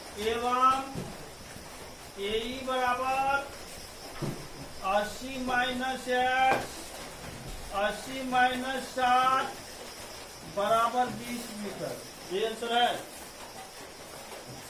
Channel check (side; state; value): both; identical; correlation 1.00